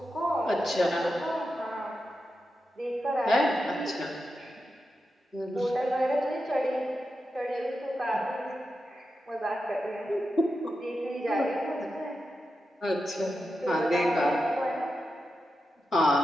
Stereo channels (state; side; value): normal; both; correlation 0.89